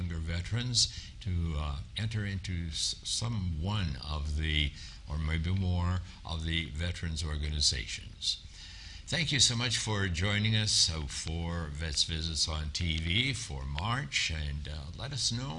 veterans to enter into some one of the, or maybe more, of the veterans organizations. Thank you so much for joining us for Vets Visits on TV for March, and let us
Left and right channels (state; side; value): identical; both; correlation 1.00